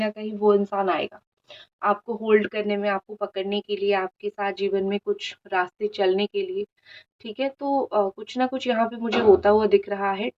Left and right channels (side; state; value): both; identical; correlation 1.00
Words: कहीं वो इंसान आएगा आपको होल्ड करने में, आपको पकड़ने के लिए, आपके साथ जीवन में कुछ रास्ते चलने के लिए। ठीक है। तो कुछ ना कुछ यहाँ पे मुझे होता हुआ दिख रहा है।